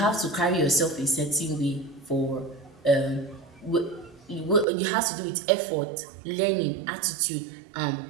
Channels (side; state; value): left; drops out; at 4.7 s